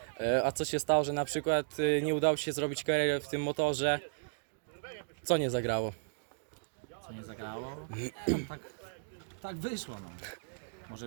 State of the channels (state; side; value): silent; left; digital silence